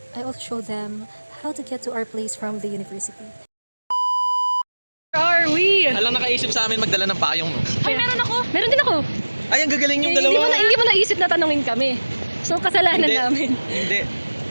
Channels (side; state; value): both; inverted; correlation -1.00